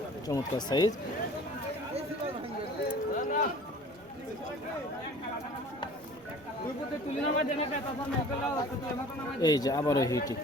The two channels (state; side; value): noise; right; rumble, 27 dB below the sound